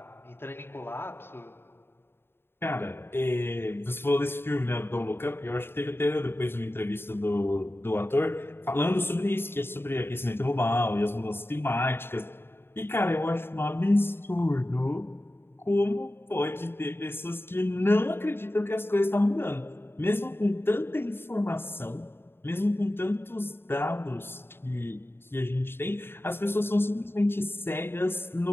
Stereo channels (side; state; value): right; late; 0.11 ms